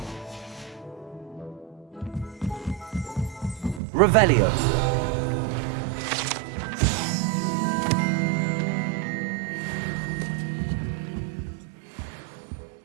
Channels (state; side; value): drops out; left; at 3.8 s